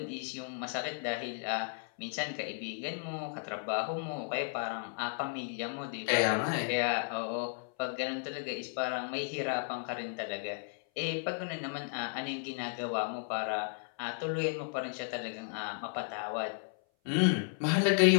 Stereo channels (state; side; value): silent; right; 55 dB below the other